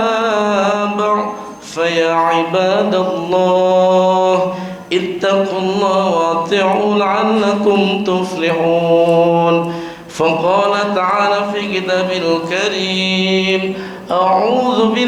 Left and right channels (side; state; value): both; identical; correlation 1.00